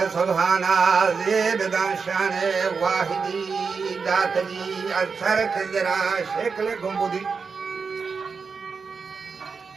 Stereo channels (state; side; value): quieter; left; 5.2 dB